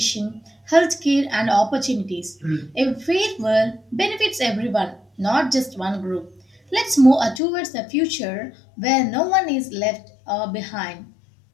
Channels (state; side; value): drops out; right; at 7.4 s